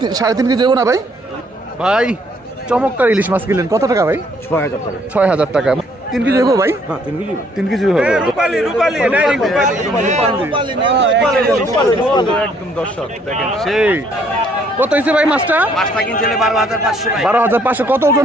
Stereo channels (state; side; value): normal; both; correlation 0.65